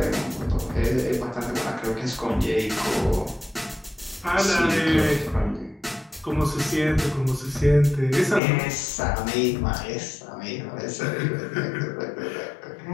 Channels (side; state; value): right; drops out; at 8.4 s